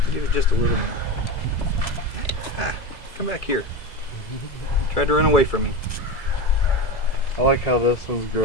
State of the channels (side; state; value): right; late; 2.0 ms